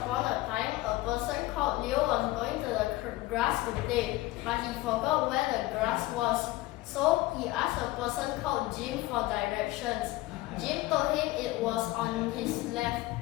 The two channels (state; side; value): quieter; right; 18.3 dB